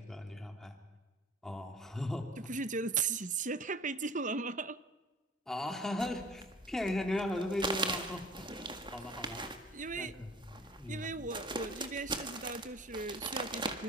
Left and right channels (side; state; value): both; normal; correlation 0.45